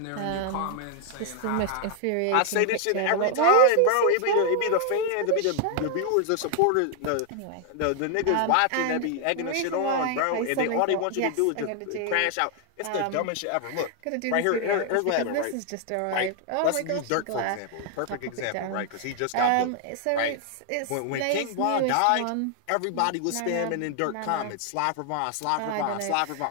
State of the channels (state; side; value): different; both; correlation 0.00